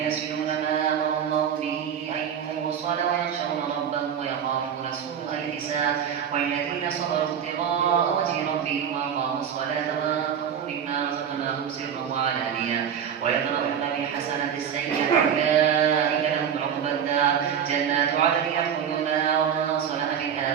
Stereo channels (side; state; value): left; quieter; 8.2 dB